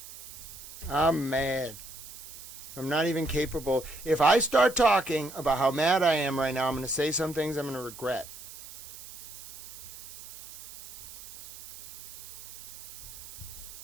I'm mad. I'm not even capable. If I start talking about how mad I am right now, I'm going to say some things I'm going to regret.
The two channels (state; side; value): noise; right; hiss, 15 dB below the sound